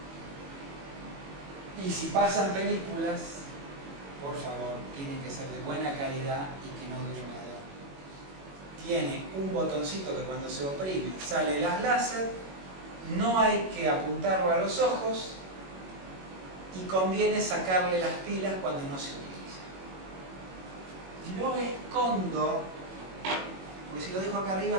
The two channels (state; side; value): late; left; 21 ms